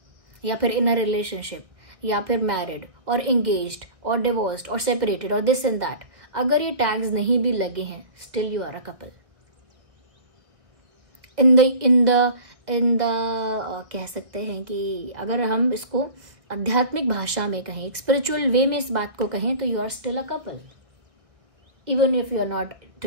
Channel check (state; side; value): late; left; 1.4 ms